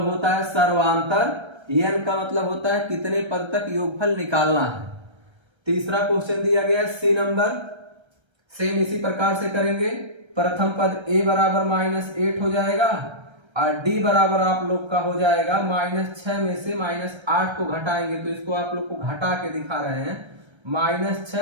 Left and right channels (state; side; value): late; left; 1.3 ms